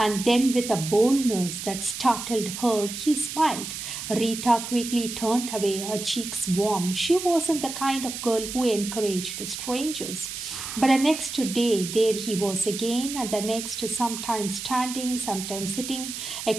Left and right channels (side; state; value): right; noise; hiss, 7 dB below the sound